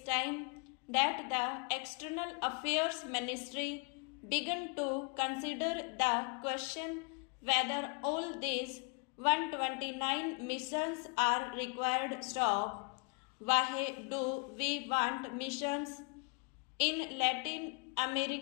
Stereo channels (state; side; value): quieter; right; 34.5 dB